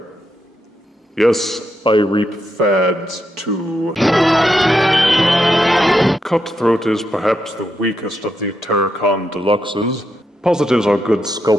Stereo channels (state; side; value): normal; both; correlation 0.83